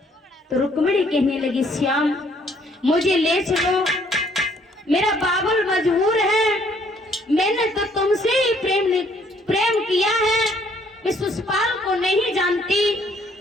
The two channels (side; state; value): both; normal; correlation 0.64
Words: तो रुक्मिणी कहने लगी, श्याम मुझे ले चलो, मेरा बाबुल मजबूर है, मैंने तो तुमसे ही प्रेम किया है, मैं सुषपाल को नहीं जानती,